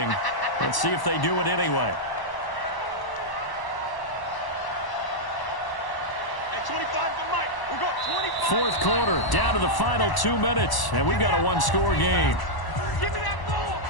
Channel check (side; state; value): right; late; 1.0 ms